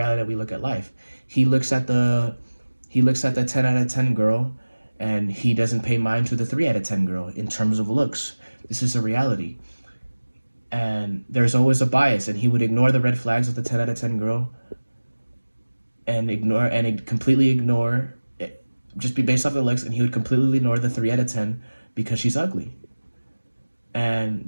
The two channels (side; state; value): both; inverted; correlation -1.00